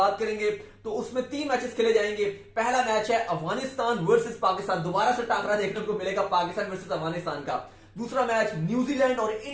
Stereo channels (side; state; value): both; identical; correlation 1.00